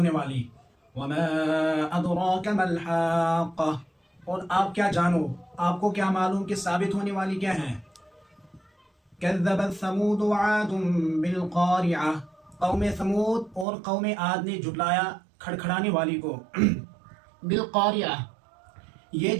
والی۔ وما ادراک ما الحاقہ، اور آپ کیا جانو، آپ کو کیا معلوم کہ ثابت ہونے والی کیا ہے؟ کذبت ثمود وعاد بالقارعہ، قوم ثمود اور قوم عاد نے جھٹلایا کھڑکھڑانے والی کو۔ بالقارعہ یہ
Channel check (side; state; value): left; drops out; at 13.7 s